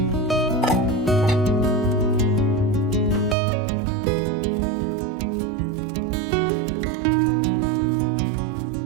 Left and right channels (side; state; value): left; drops out; at 3.4 s